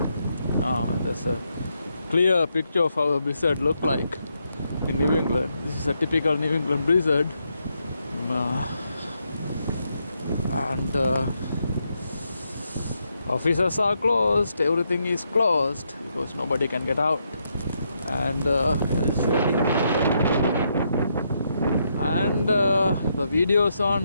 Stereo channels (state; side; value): inverted; both; correlation -0.79